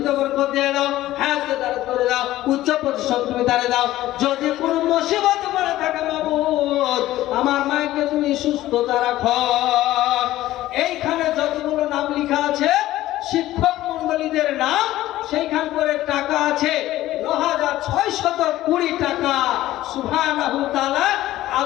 বরকত দিয়ে দাও, হায়াতকে দারাজ করে দাও, উচ্চ প্রতিষ্ঠান তুমি তারে দাও। যদি কোনো মুসিবত পড়ে থাকে মাবুদ আমার মাকে তুমি সুস্থতা রাখো। এইখানে যতগুলো নাম লেখা আছে শিক্ষক মন্ডলীদের নাম, সেইখান করে টাকা আছে 9,620 টাকা। সুবহানাহু তাআলা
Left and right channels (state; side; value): quieter; right; 15.2 dB